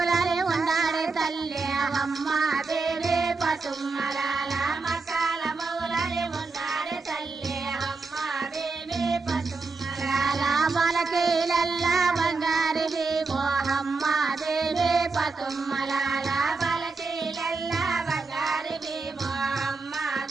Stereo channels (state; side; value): quieter; left; 4.1 dB